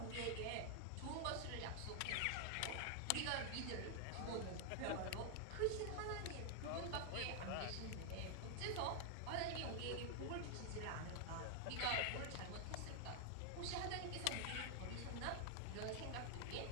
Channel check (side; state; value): both; different; correlation 0.00